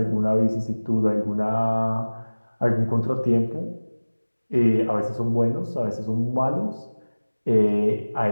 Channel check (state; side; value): inverted; both; correlation -1.00